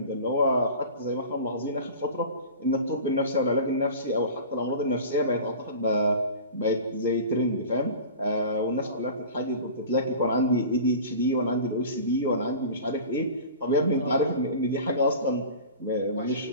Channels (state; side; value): inverted; both; correlation -0.37